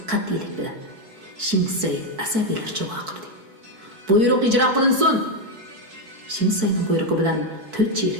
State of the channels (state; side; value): late; left; 4.6 ms